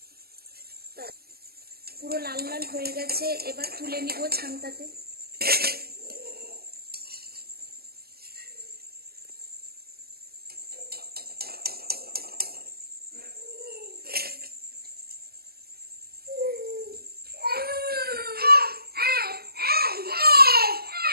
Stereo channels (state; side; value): late; left; 0.45 ms